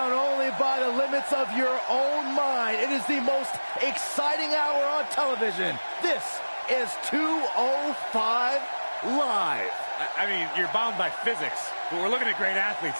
only by the limits of your own mind. It is the most exciting hour on television. This is 205 Live. I mean, you're bound by physics, but we're looking at great athletes,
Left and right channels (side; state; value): both; inverted; correlation -1.00